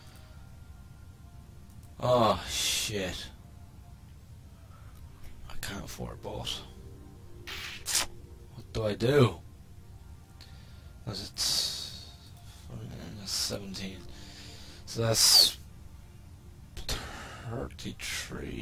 Oh shit. I can't afford both. What do I do? Because it's 17. So that's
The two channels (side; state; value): both; identical; correlation 1.00